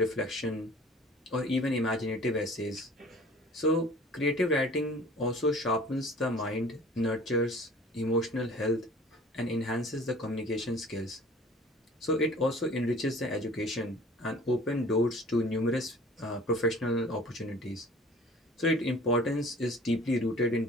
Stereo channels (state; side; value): normal; both; correlation 0.47